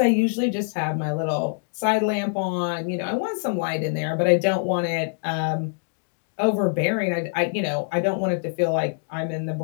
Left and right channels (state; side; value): silent; right; digital silence